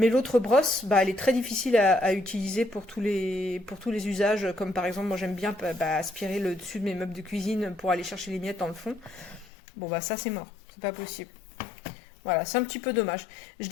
l'autre brosse, bah, elle est très difficile à utiliser pour tous les usages, comme par exemple, moi j'aime bien aspirer le dessus de mes meubles de cuisine pour aller chercher les miettes dans le fond. Bon bah ça c'est mort. C'est pas possible. Voilà, c'est un petit peu dommage. Je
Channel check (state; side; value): drops out; right; at 9.5 s